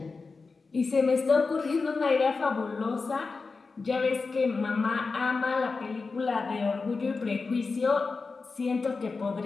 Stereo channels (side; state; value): right; quieter; 4.3 dB